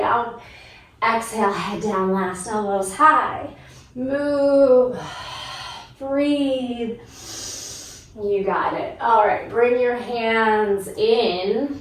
Exhale, head down last, elbows high. Move, breathe. You got it. All right, bring your hands in,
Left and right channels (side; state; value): both; identical; correlation 1.00